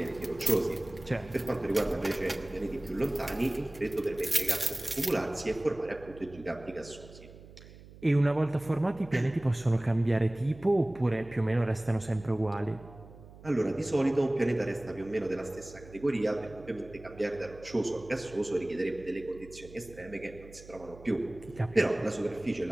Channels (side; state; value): right; noise; hum, 19 dB below the sound